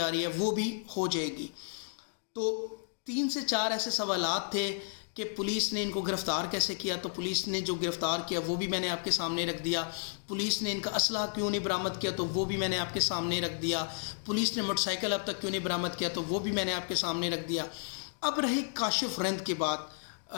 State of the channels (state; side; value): silent; right; digital silence